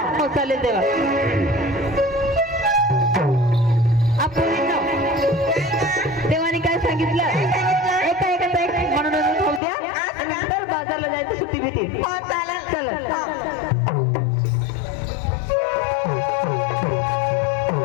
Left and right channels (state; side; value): drops out; right; at 9.6 s